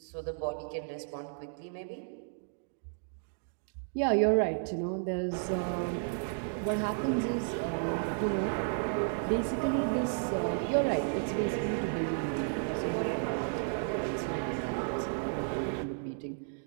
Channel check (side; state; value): left; silent; digital silence